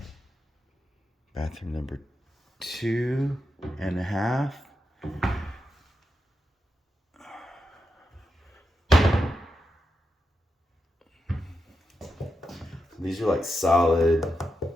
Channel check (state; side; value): normal; both; correlation 0.87